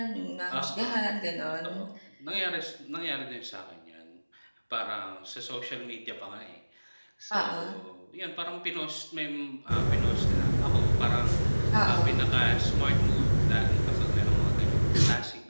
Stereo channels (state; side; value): inverted; both; correlation -1.00